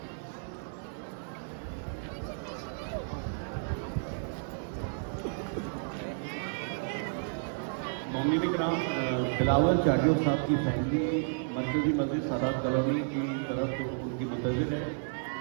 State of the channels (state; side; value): silent; left; 57 dB below the other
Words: मोमिन इकराम, बिलावल चाडियो साहब की फैमिली मरकजी मस्जिद सादात कॉलोनी की तरफ उनकी मुंतज़िर है।